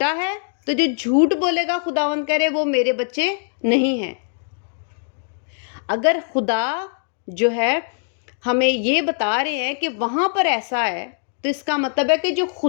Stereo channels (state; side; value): silent; right; digital silence